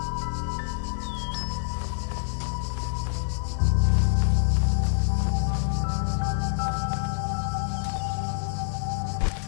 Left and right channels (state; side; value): silent; right; 61 dB below the other